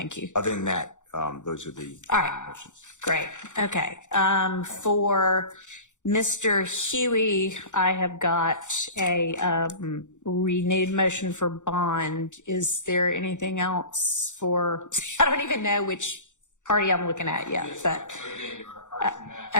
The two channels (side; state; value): right; late; 0.85 ms